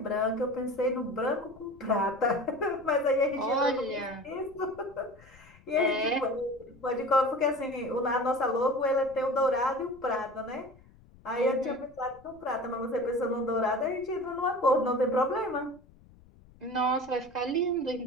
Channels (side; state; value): left; noise; rumble, 25 dB below the sound